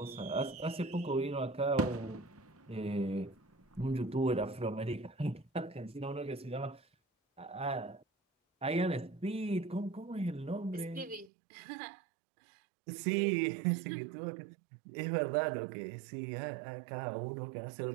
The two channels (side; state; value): left; drops out; at 11.3 s